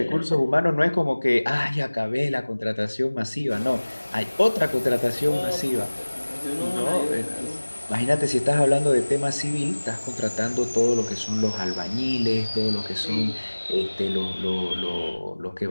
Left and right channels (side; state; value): both; inverted; correlation -1.00